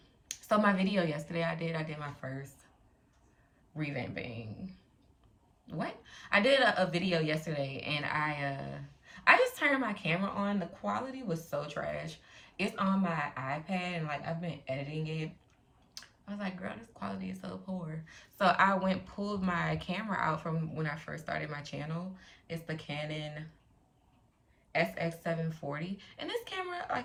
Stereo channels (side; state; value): both; identical; correlation 1.00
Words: so my video yesterday I did my first revamping. What? I did a video yesterday and I just turned my camera on. The quality was so trash. It's on my iPad and like I've been editing it. I was like, girl, this quality is so poor. So I pulled my camera out from when I first started my channel. It's the Canon SX740. And this camera,